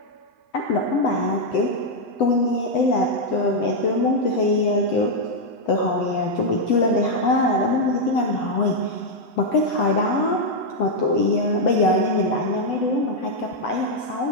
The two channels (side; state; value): right; late; 8.0 ms